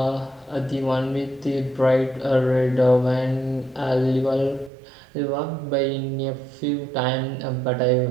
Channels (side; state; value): left; drops out; at 4.7 s